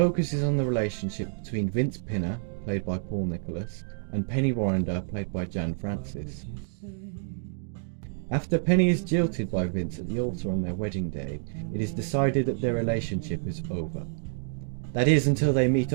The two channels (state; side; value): silent; left; digital silence